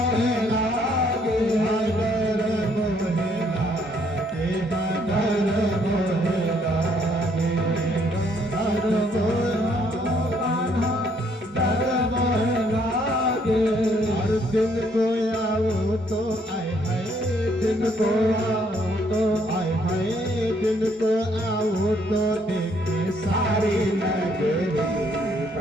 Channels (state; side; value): normal; both; correlation 0.68